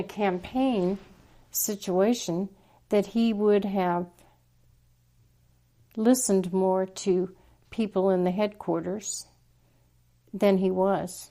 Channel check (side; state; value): both; identical; correlation 1.00